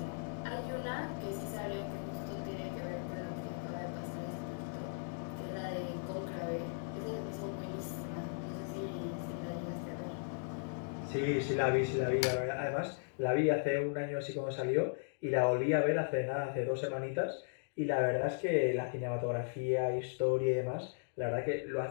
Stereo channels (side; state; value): right; silent; digital silence